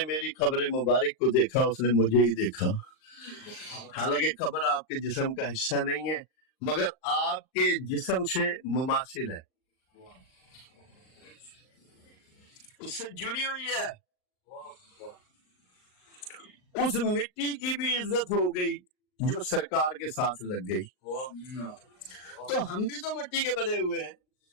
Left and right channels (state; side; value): late; right; 39 ms